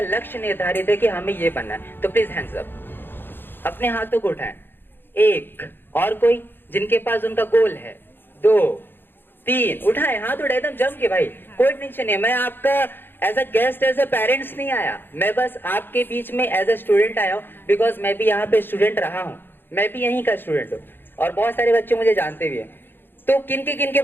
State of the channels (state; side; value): late; right; 0.10 ms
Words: लक्ष्य निर्धारित है कि हमें ये बनना है। तो प्लीज हैंड्स अप, अपने हाथों को उठाएं। 1, और कोई जिनके पास उनका गोल है, 2, 3, उठाएं, हाथ उठाए एकदम जम के भाई, कोई टेंशन नहीं। मैं आपका as a guest, as a parents नहीं आया, मैं बस आपके बीच में एज अ स्टूडेंट आया हूँ, बिकॉज मैं भी यहाँ पे स्टूडेंट रहा हूँ, मैं भी यहीं का स्टूडेंट हूँ, और बहुत सारे बच्चे मुझे जानते भी हैं। तो किनके